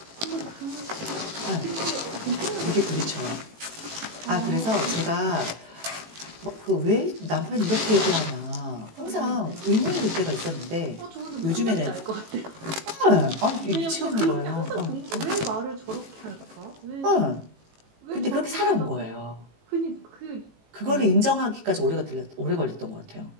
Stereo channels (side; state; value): left; late; 18 ms